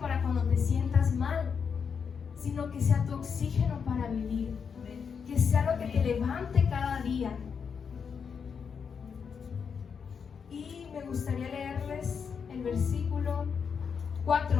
para cuando te sientas mal, sino que sea tu oxígeno para vivir, que sea lo que te levante cada día. Y me gustaría leerles el versículo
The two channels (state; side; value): quieter; right; 6.4 dB